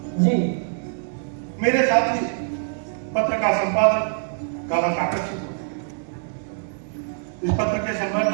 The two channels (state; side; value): silent; left; digital silence